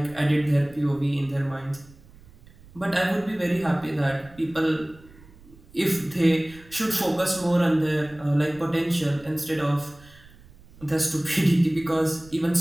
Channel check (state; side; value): noise; right; rumble, 24 dB below the sound